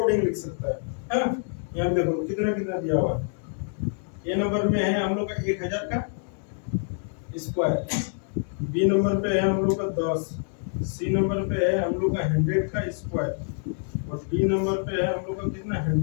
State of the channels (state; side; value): silent; right; 56 dB below the other